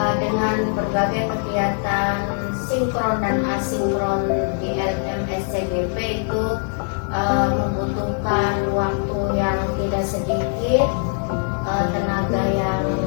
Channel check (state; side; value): silent; right; 57 dB below the other